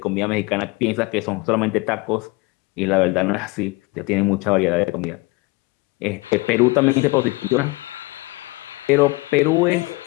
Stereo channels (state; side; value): quieter; right; 24.6 dB